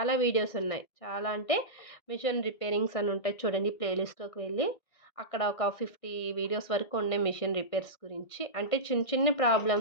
వీడియోస్ ఉన్నాయి. చాలా అంటే మిషన్ రిపేరింగ్స్ అని ఉంటాయి చూడండి. ప్లేలిస్ట్‌లోకి వెళ్ళి అక్కడ ఒక 50 వీడియోస్ వరకు ఉన్నాయి మిషన్ రిపేర్స్ గురించి. అంటే చిన్న చిన్న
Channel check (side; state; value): right; late; 1.6 ms